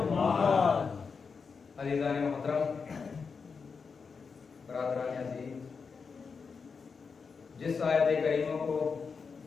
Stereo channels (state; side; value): quieter; right; 5.4 dB